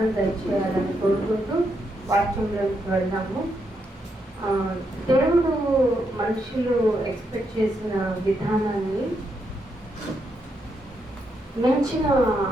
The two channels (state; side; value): normal; both; correlation 0.80